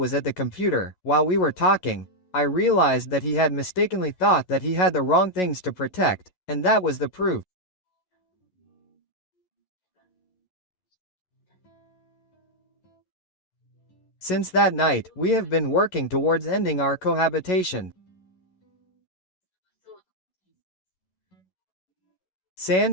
at the computer, while we were talking, I realized that he had mistakenly thought that he had the wrong things to protect, and that was the proof. Since that night, we have been working towards ending our cohabitation.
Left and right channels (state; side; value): late; right; 11 ms